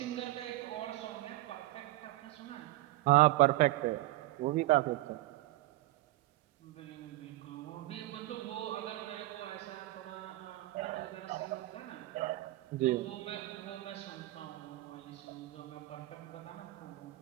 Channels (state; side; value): quieter; left; 17.7 dB